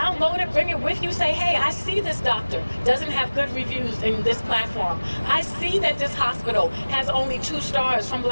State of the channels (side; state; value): both; inverted; correlation -1.00